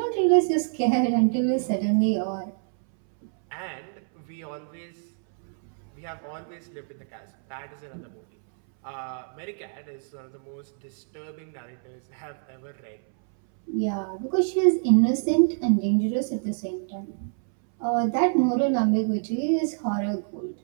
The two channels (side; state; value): left; silent; 61 dB below the other